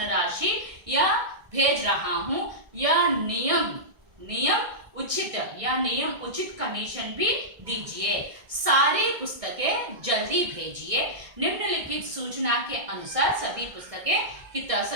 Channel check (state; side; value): late; left; 1.6 ms